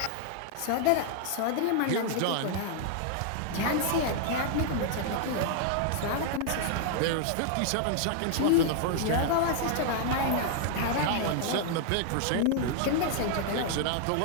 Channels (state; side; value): different; both; correlation 0.00